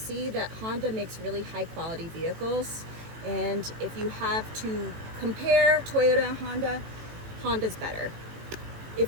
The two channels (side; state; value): left; late; 18 ms